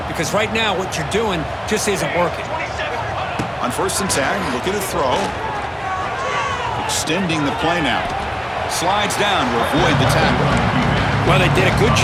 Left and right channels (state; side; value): identical; both; correlation 1.00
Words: because right now what you're doing just isn't working. On 1st and 10, looking to throw. Extending the play now. Slides down to avoid the tackle. Well, they did a good